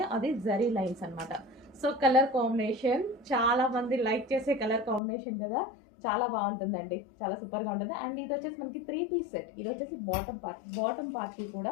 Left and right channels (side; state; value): right; drops out; at 5.0 s